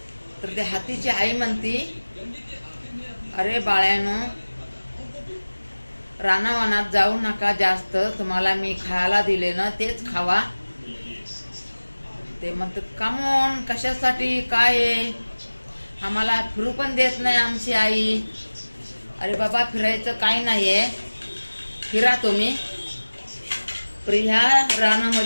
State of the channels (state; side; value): inverted; both; correlation -1.00